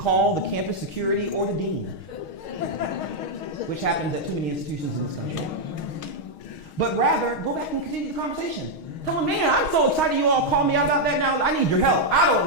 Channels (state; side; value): late; right; 6.4 ms